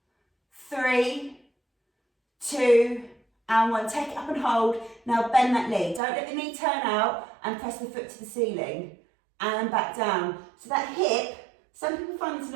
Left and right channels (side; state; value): left; drops out; at 6.0 s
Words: 3, 2, and 1. Take it up and hold. Now bend that knee. Don't let the knee turn out and press the foot to the ceiling. And back down. So that hip, some people find this a